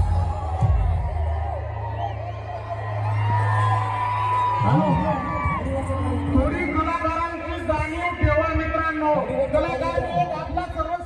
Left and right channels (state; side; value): identical; both; correlation 1.00